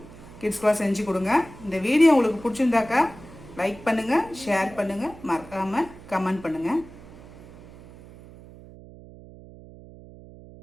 கிட்ஸ்க்கெலாம் செஞ்சு கொடுங்க. இந்த வீடியோ உங்களுக்கு பிடிச்சிருந்தாக்கா லைக் பண்ணுங்கள், ஷேர் பண்ணுங்கள், மறக்காமல் கமெண்ட் பண்ணுங்கள்.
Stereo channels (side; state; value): right; noise; hum, 19 dB below the sound